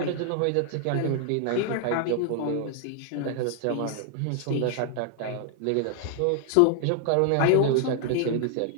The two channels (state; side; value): different; both; correlation 0.00